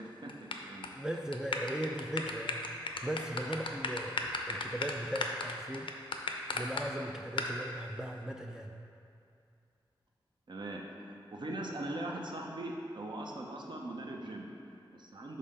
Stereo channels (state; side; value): normal; both; correlation 0.45